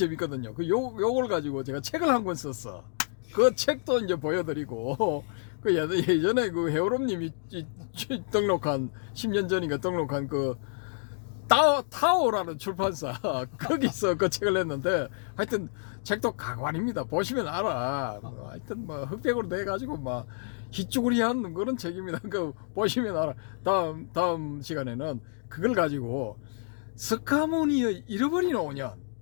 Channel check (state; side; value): silent; right; digital silence